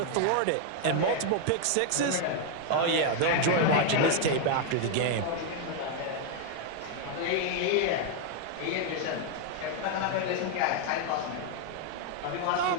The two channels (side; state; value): both; different; correlation 0.00